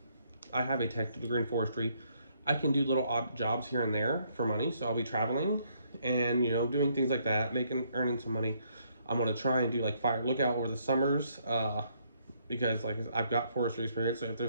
a technical degree in forestry. I can do little odd jobs here and there for money, so I'll be traveling and doing things like that, earning some money. I'm gonna try and do like fire lookout over the summers, because like I've got forestry experience. So if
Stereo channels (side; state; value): both; inverted; correlation -0.70